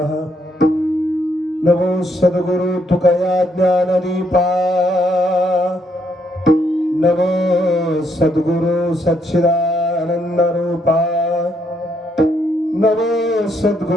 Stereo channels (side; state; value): both; normal; correlation 0.73